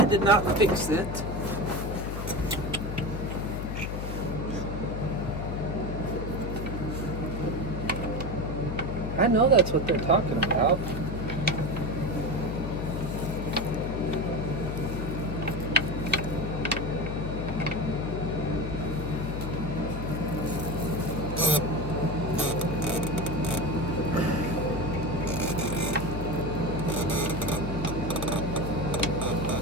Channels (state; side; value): noise; left; hum, 4 dB below the sound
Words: did not fix it. I know that's what they're talking about.